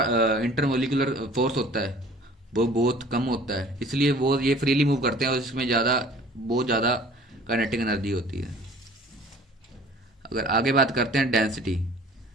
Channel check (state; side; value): normal; both; correlation 0.49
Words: फोर्स होता है वो बहुत कम होता है, इसलिए वो ये फ्रीली मूव करते हैं और इसमें ज़्यादा बहुत ज़्यादा काइनेटिक एनर्जी होती है। अगर आगे बात करते हैं डेंसिटी,